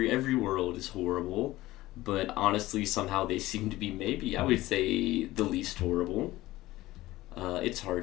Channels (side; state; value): right; quieter; 17.3 dB